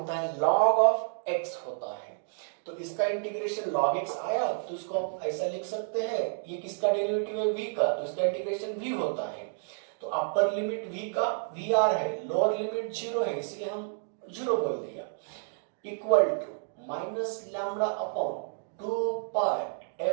है log ऑफ x होता है। तो इसका इंटीग्रेशन log x आया तो इसको आप ऐसा लिख सकते हैं, ये किसका डेरिवेटिव है, v का, तो इसका इंटीग्रेशन v होता है। तो अपर लिमिट v का vr है, लोअर लिमिट 0 है, इसलिए हम 0 बोल दिया, equal to minus lambda upon 2 pi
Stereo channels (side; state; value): left; silent; digital silence